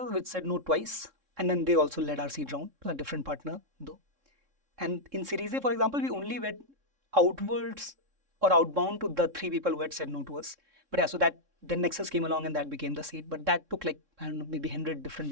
which said no twice. And then they also led our seed round, a different partner though. And in Series A, for example, we only went outwards or outbound to the 3 people who had said no to us. But yeah, so that then Nexus came along and that became the seed. But that took like, I don't know, maybe 100 different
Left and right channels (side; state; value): left; late; 3.6 ms